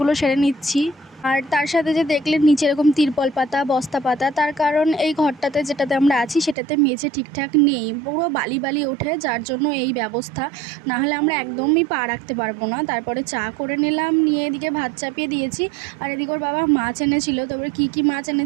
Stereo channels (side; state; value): left; drops out; at 6.6 s